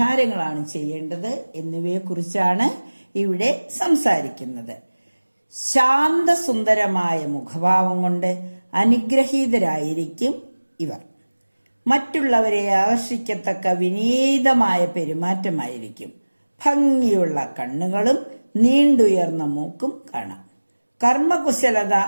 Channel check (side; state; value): both; inverted; correlation -1.00